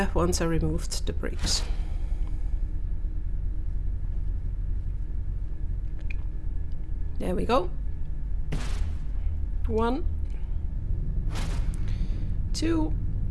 once I removed the bricks. There we go. 1, 2.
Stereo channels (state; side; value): identical; both; correlation 1.00